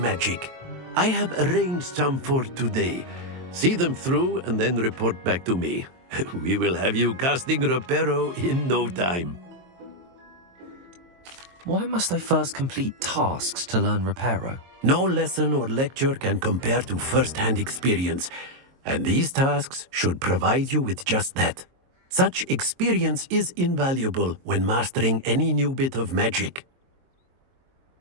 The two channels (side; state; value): left; late; 22 ms